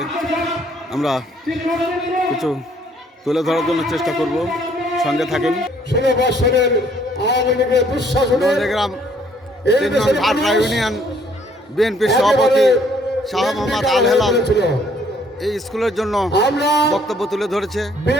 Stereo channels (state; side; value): normal; both; correlation 0.63